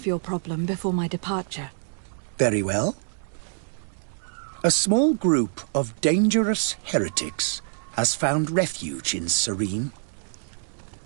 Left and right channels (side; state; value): left; silent; digital silence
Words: your problem before my departure. Very well. A small group of dangerous heretics has found refuge in Serene.